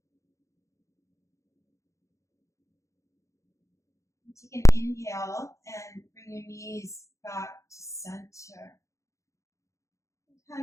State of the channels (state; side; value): late; right; 0.15 ms